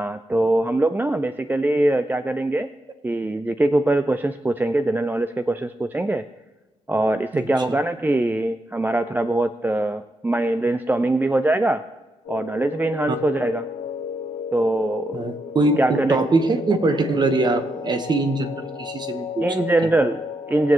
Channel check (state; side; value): normal; both; correlation 0.83